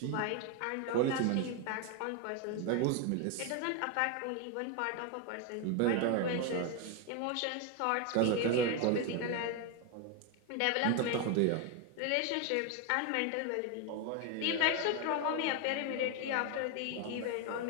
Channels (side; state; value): both; different; correlation 0.01